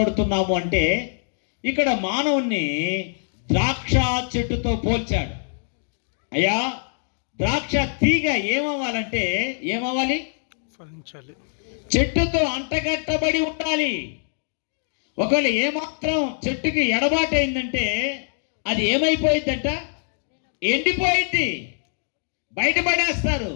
అంటే, ఇక్కడ మానవుణ్ణి ద్రాక్ష చెట్టుతో పోల్చాడు. అయ్యా, ద్రాక్ష తీగ ఏమవ్వాలి? ఫలించాలి. చెట్టుతో అంటగట్టబడి ఉండాలి. ఒకవేళ ఏమాత్రం చెట్టుకి ఎడబాటైందంటే అది ఏమైపోయిందంట? ఎండిపోయింది, బయటపడేస్తారు.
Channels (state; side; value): silent; right; digital silence